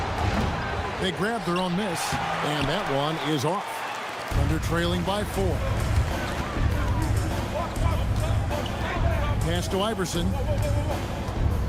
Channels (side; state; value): both; identical; correlation 1.00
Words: They grabbed their own miss, and that one is off. Thunder trailing by 4. Pass to Iverson.